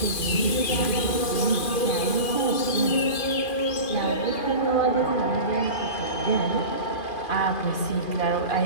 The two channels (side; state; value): right; late; 2.4 ms